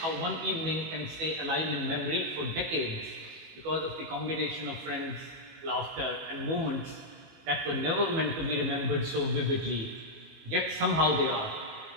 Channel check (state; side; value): late; left; 18 ms